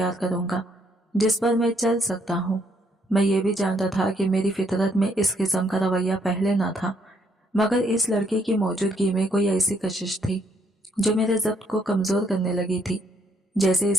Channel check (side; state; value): both; normal; correlation 0.70